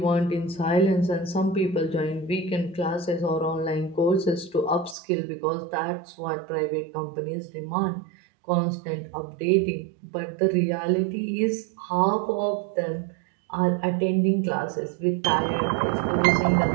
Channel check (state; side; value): drops out; left; at 5.0 s